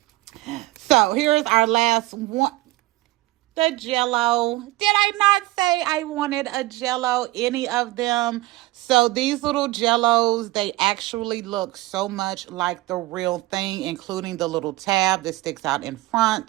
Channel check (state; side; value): quieter; left; 19.0 dB